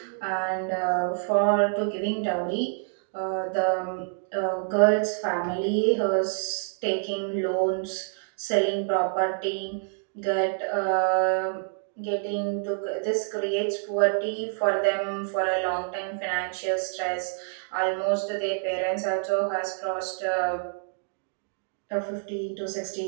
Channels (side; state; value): left; silent; digital silence